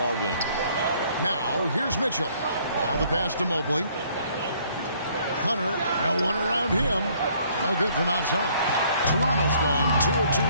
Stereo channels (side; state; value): both; inverted; correlation -0.62